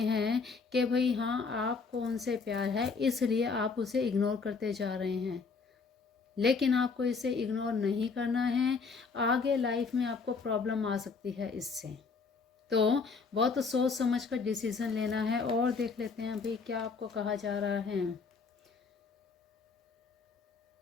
कि भाई हाँ आपको उनसे प्यार है इसलिए आप उसे इग्नोर करते जा रहे हैं। लेकिन आपको इसे इग्नोर नहीं करना है, आगे लाइफ में आपको प्रॉब्लम आ सकती है इससे। तो बहुत सोच समझ कर डिसीज़न लेना है। और देख लेते हैं अभी क्या आपको कहा जा रहा है।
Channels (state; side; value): quieter; right; 4.9 dB